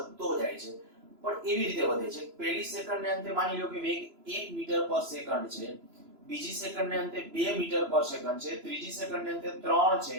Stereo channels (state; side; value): late; left; 3.0 ms